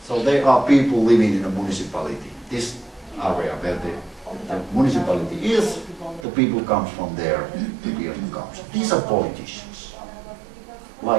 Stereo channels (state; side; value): drops out; left; at 6.2 s